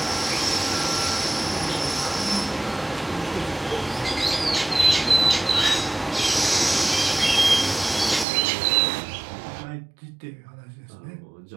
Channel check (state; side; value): drops out; left; at 8.2 s